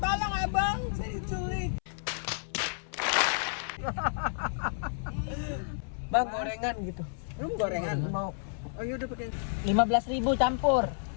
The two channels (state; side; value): silent; right; 57 dB below the other